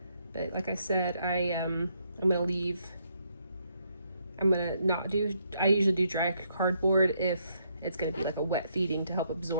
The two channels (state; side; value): inverted; both; correlation -0.74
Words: But like I said, I'm gonna not do, I usually do dry cardboard if it's gonna be like a wet feeding to help